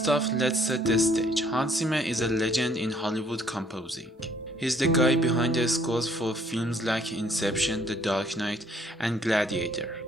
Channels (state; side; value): normal; both; correlation 0.63